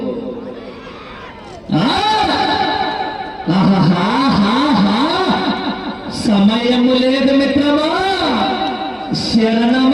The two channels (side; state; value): both; identical; correlation 1.00